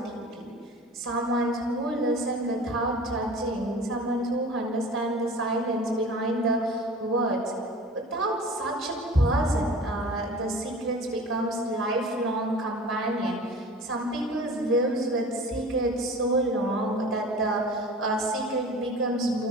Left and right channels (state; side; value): normal; both; correlation 0.40